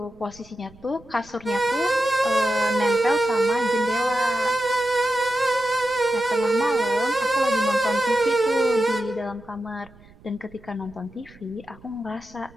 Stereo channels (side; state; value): right; noise; rumble, 24 dB below the sound